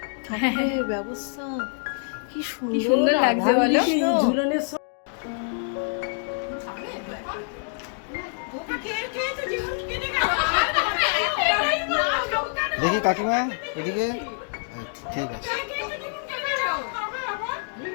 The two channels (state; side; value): silent; right; digital silence